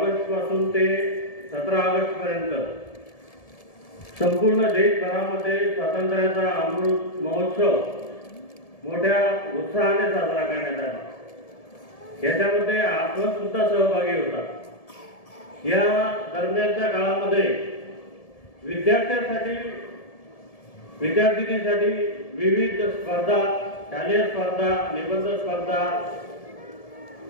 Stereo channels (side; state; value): right; late; 1.7 ms